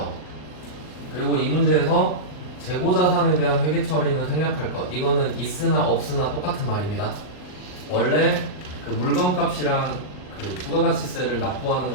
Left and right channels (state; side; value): late; right; 39 ms